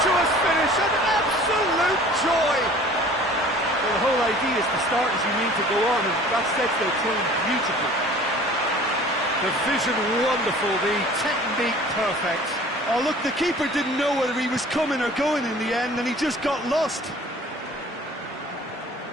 finish, an absolute joy! Well, the whole idea is to start as you need to go on, and that sets their tone beautifully. The vision wonderful, the technique perfect. Oh, look, the keeper didn't know whether he was coming or going in the end, and he just got lost.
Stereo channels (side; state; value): both; normal; correlation 0.47